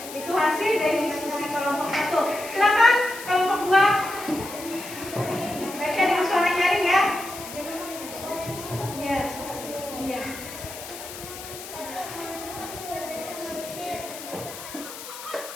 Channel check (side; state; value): left; noise; hiss, 12 dB below the sound